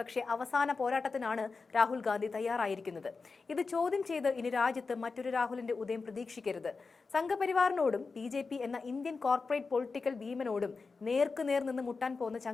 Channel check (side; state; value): right; quieter; 4.4 dB